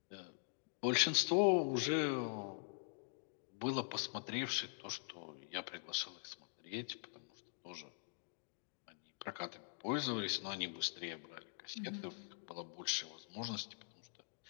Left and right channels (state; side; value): silent; right; digital silence